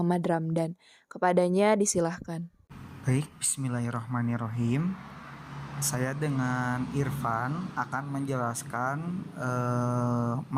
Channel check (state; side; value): identical; both; correlation 1.00